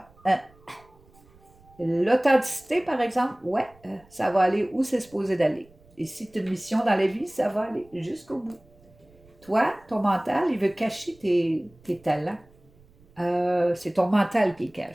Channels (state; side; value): noise; right; rumble, 28 dB below the sound